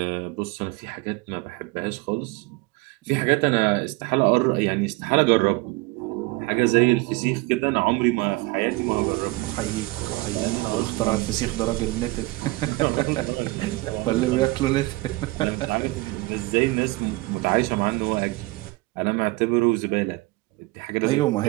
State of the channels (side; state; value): left; quieter; 22.4 dB